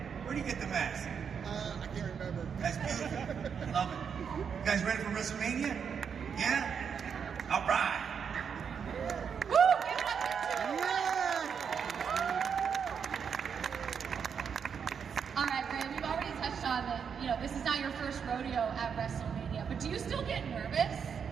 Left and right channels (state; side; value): quieter; left; 6.9 dB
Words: Where'd you get the mask? I can't remember. That's beautiful. Love it. You guys ready for WrestleMania? Yeah? All right. Woo, give it up for two. Yeah! All right, Ray, we've already touched on that, this is not your first rodeo at WrestleMania, but do you still get nervous?